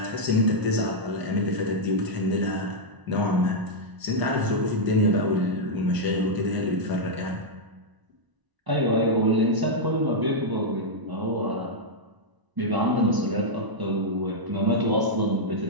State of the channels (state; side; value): late; left; 1.0 ms